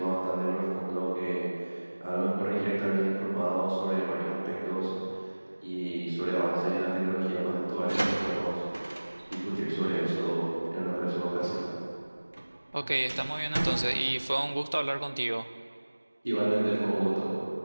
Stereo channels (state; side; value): inverted; both; correlation -1.00